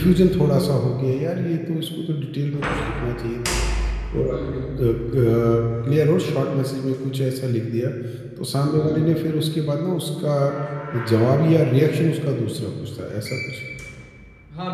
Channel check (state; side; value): identical; both; correlation 1.00